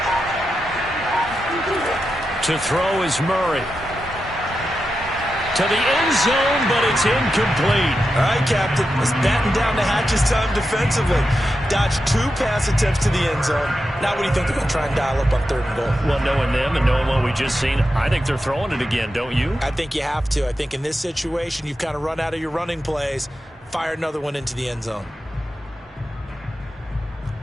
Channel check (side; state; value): both; normal; correlation 0.89